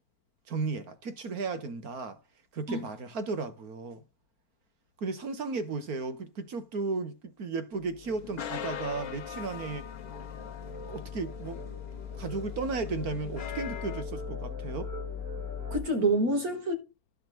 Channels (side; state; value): left; late; 4.4 ms